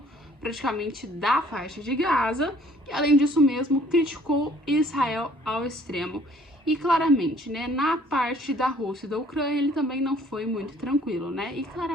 praticamente, da faixa de Gaza, e além disso mesmo, criticou Israel ao extremo. E claramente, né, na parte da Rússia e da Ucrânia, ele também não foi muito tranquilo, né? E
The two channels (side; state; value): both; normal; correlation 0.58